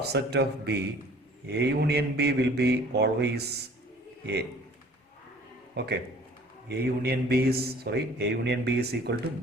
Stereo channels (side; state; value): both; normal; correlation 0.51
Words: of B, A union B will be always A. Okay. A union B is equal to